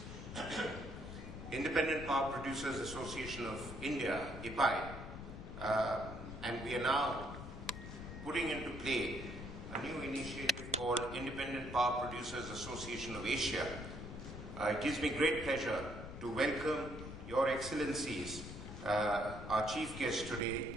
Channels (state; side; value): noise; left; rumble, 9 dB below the sound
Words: Independent Power Producers Association of India, IPAI, and we are now putting into play a new initiative called Independent Power Producers Association of Asia. It gives me great pleasure to welcome Your Excellencies, our chief guest